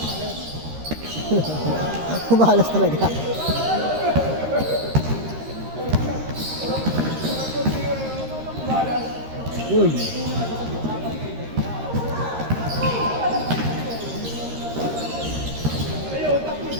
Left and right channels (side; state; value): left; late; 13 ms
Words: Umalas talaga. Uy.